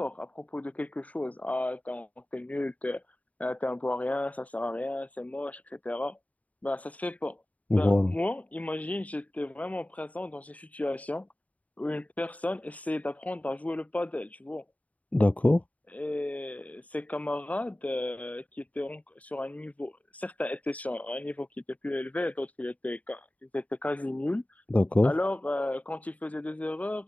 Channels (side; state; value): right; late; 0.070 ms